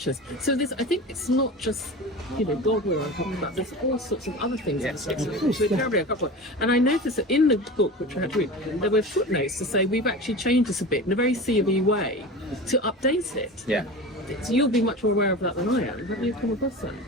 So I think it's not just, God we're talking about, there's all sorts of other things in the scriptures which we're terribly uncomfortable. And I noticed that in the book, which I had to read, there were footnotes to say we've actually changed this a bit in a very CLH way to update it. Yeah. So you'll be much more aware of that than I am. Have you come across that?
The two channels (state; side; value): normal; both; correlation 0.32